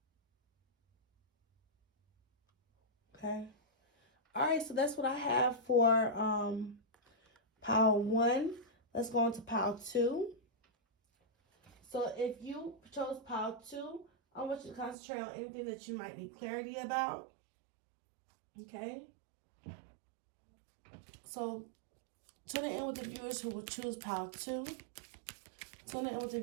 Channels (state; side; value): drops out; left; at 15.0 s